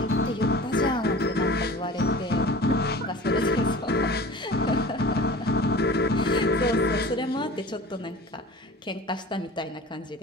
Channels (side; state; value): both; normal; correlation 0.39